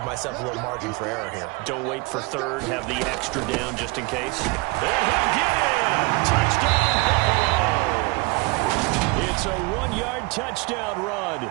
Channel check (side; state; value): left; quieter; 26.4 dB